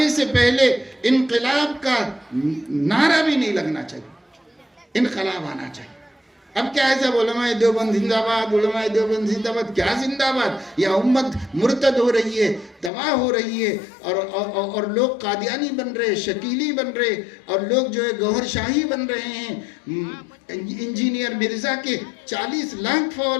से पहले इनकलाब का नारा भी नहीं लगना चाहिए, इनकलाब आना चाहिए। अब क्या है, सब उलमाए देवबंद जिंदाबाद, उलमाए देवबंद जिंदाबाद, क्या जिंदाबाद? यह उम्मत मुर्तद हो रही है, तबाह हो रही है, और लोग कादियानी बन रहे, शकीली बन रहे, और लोग जो है गौहर शाही बन रहे हैं। इंजीनियर मिर्जा के 40 लाख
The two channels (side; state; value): right; drops out; at 12.9 s